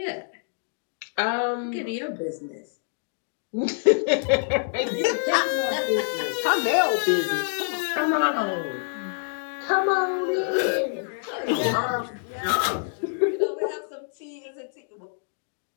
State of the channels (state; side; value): silent; right; digital silence